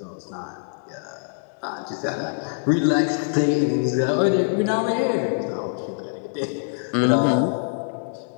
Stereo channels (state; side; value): silent; right; 63 dB below the other